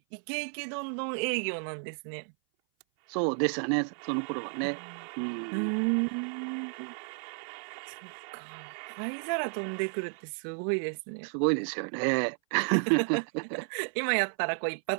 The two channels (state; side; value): silent; left; 56 dB below the other